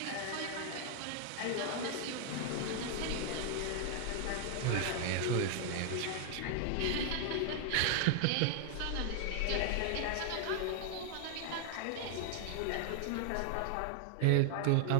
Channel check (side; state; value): both; different; correlation 0.00